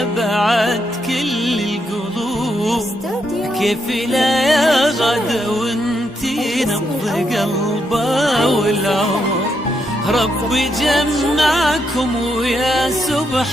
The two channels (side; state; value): both; normal; correlation 0.80